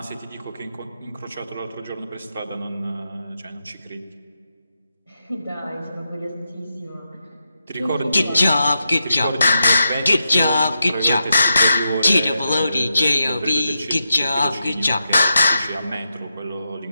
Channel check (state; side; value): inverted; both; correlation -0.86